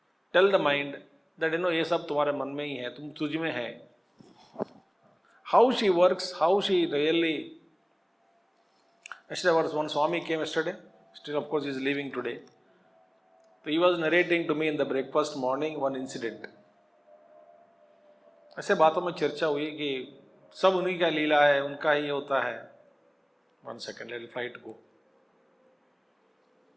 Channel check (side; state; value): both; identical; correlation 1.00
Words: Tell the mind that ये सब तुम्हारे मन में ही है, तुम तुझ में है. How she works, how she really. Yesterday was one Swami came yesterday. Still, of course, he is leaving today. So he was narrating to me in the breakfast morning one incident. ऐसे बातों में चर्चा हुई कि सब उन्हीं का लीला है, उनका ही होता है. 1 second, let the flight go.